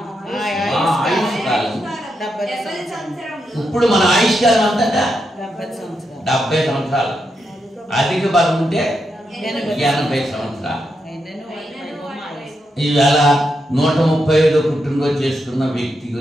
ఇప్పుడు మన ఆయుష్కాలం అంతటా 70 సంవత్సరాలు. అధిక బలం ఉంటే 80 సంవత్సరాలు. ఈవేళ 135 పుట్టినరోజు చేసుకున్న వ్యక్తి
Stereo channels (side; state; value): both; normal; correlation 0.84